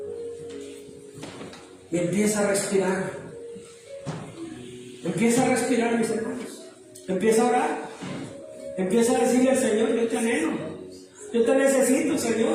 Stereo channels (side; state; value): both; identical; correlation 1.00